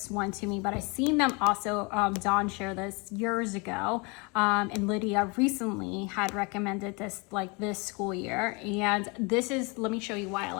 one to me, but I seen them also, Dawn shared this years ago, and Lydia recently had recommended this like this school year. And this is, let me show you why I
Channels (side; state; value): right; quieter; 30.2 dB